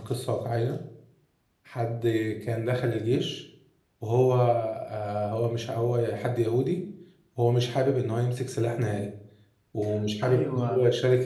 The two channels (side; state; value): both; identical; correlation 1.00